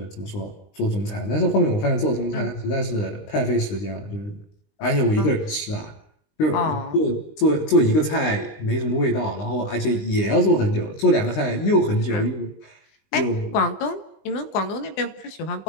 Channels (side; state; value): right; late; 20 ms